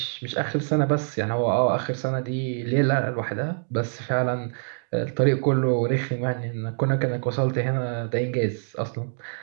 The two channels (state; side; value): silent; left; digital silence